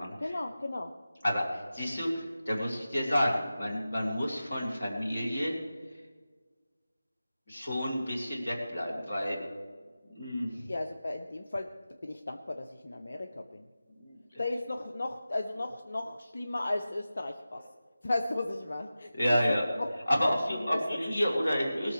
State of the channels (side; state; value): both; inverted; correlation -0.95